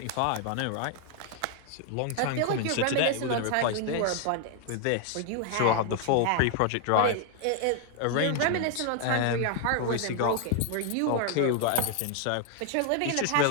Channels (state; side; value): different; both; correlation 0.00